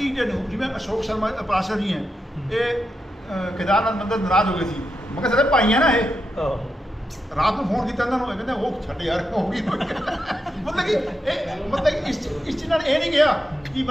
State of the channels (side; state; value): both; normal; correlation 0.86